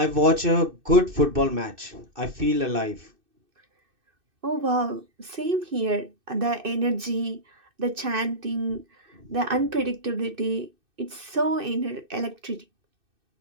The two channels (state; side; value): late; left; 2.6 ms